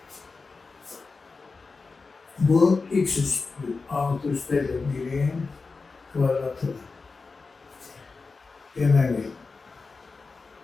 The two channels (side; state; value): right; quieter; 4.2 dB